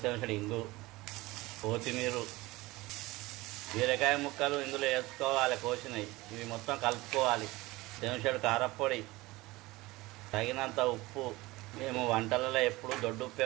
చెంచాడు ఇంగు, కొత్తిమీర, బీరకాయ ముక్కలు ఇందులో వేసుకోవాలి. కోసినవి ఇవి మొత్తం కలుపుకోవాలి. చెంచాడు కారపొడి, తగినంత ఉప్పు. మేము వంటలలో ఎప్పుడు దొడ్డు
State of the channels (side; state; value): left; quieter; 20.6 dB